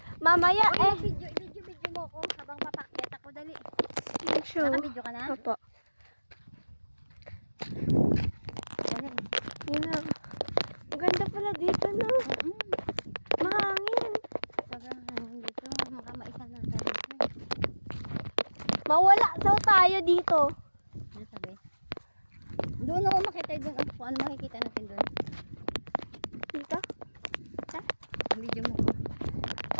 Mamaya Video mo ko habang papakyat ako. Dali. Ayan siya. Naka-video ka na? Opo. Dali. Yun na. Maganda pala dito, no? Mahangin. Sobrang hangin dito. Makamaisa na tayo. Mawala daw tayo dito. Ano sabi? Doon ako makita doon. Ano makikita natin doon? Dito? Ang video mo.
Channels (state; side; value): inverted; both; correlation -1.00